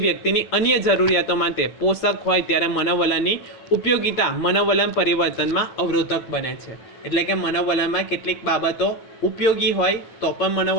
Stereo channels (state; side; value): late; right; 8.7 ms